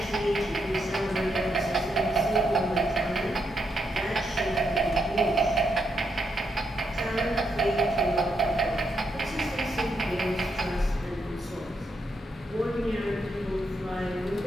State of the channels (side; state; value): both; normal; correlation 0.80